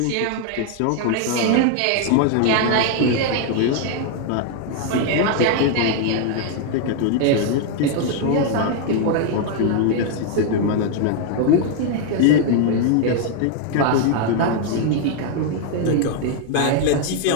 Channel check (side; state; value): both; different; correlation 0.00